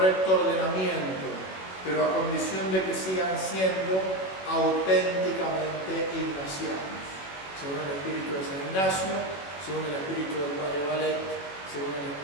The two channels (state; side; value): late; right; 21 ms